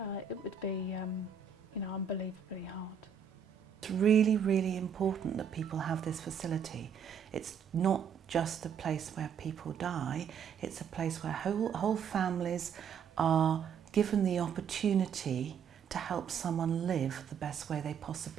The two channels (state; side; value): quieter; left; 7.2 dB